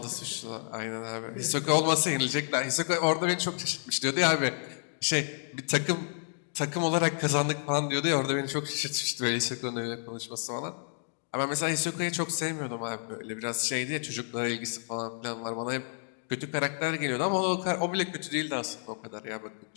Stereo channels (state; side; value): silent; right; 58 dB below the other